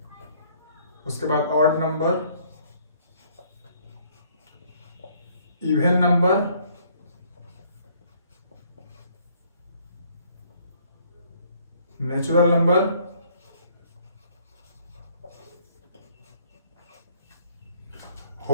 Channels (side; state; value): both; inverted; correlation -0.63